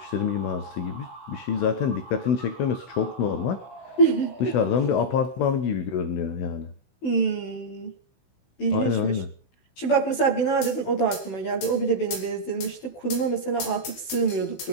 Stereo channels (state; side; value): late; right; 16 ms